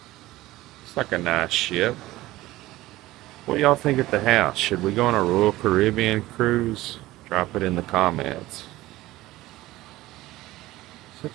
It's like a nice ship. What do y'all think at the house? Should we go on a Royal Caribbean cruise? Drop it in the comments.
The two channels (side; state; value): left; quieter; 17.3 dB